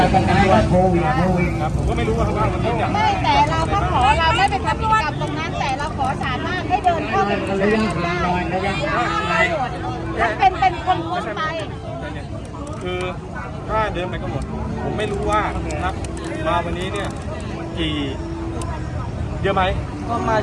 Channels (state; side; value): identical; both; correlation 1.00